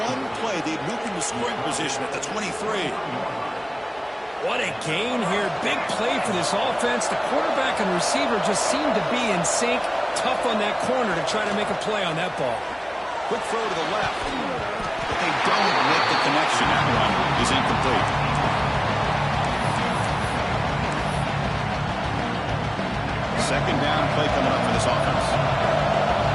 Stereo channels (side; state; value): both; identical; correlation 1.00